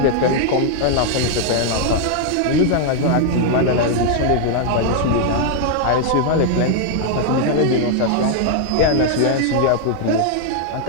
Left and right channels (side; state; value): both; different; correlation 0.00